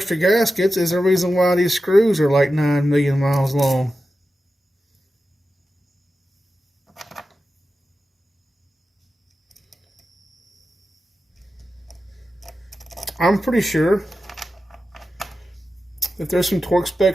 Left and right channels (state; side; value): normal; both; correlation 0.92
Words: gaskets is the reason why these screws are like 9 million miles long. I'm pretty sure that there's some torque